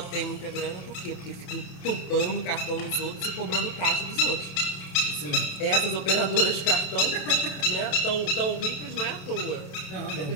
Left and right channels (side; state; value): right; late; 28 ms